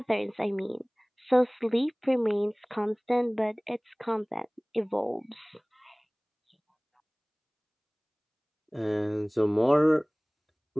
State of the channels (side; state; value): both; identical; correlation 1.00